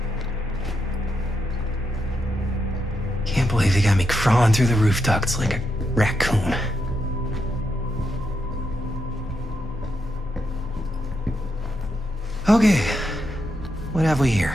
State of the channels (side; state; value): both; normal; correlation 0.83